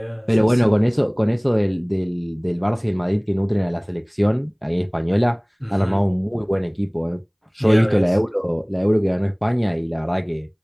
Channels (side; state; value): both; identical; correlation 1.00